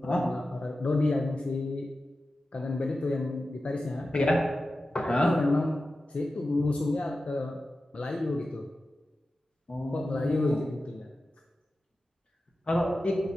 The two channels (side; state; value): both; normal; correlation 0.93